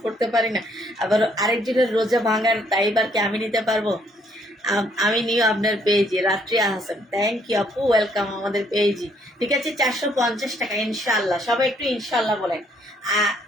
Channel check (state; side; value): normal; both; correlation 0.67